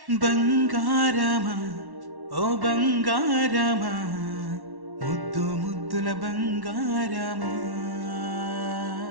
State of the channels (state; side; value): late; left; 1.1 ms